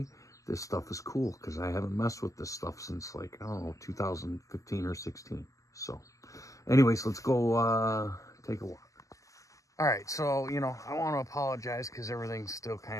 This stuff is cool, because I haven't messed with this stuff since like, I don't know, 2015 or 16. So anyways, let's go take a walk. All right, so, you know, I want to apologize because everything's still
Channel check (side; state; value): right; late; 0.16 ms